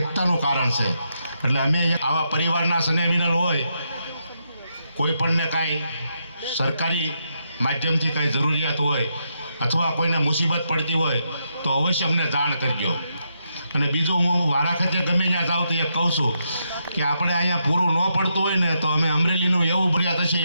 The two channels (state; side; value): inverted; both; correlation -0.81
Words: કારણ છે. એટલે અમે આવા પરિવારના સ્નેહમિલન હોય, કોઈ પણને કાંઈ સરકારી માધ્યમથી કાંઈ જરૂરિયાત હોય અથવા કોઈને મુસીબત પડતી હોય તો અવશ્ય અમને જાણ કરજો. અને બીજું હું વારાખતે ગમે ત્યાં જાઉં તો એ કહું છું કે આપણે અહીંયા પૂરું ન પડતું હોય ને તો અમે અમરેલીનું એવું ભર્યા